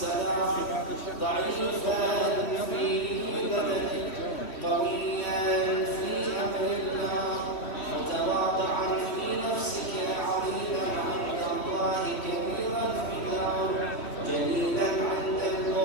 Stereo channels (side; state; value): right; late; 3.1 ms